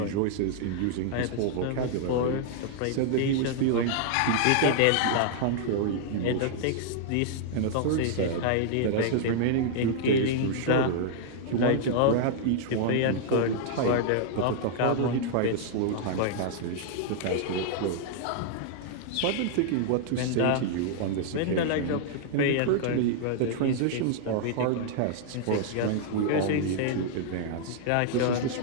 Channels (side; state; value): both; different; correlation -0.01